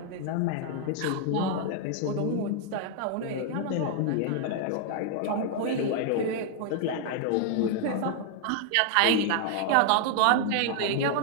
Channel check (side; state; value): both; different; correlation 0.00